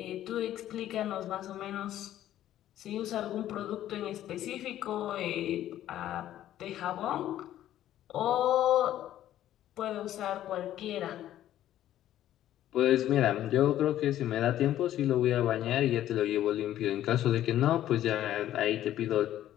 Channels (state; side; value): quieter; right; 12.5 dB